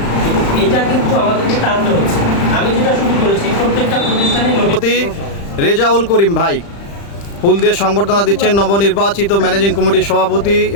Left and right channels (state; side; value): late; right; 35 ms